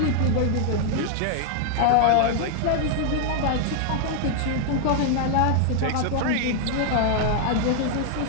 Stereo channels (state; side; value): different; both; correlation 0.00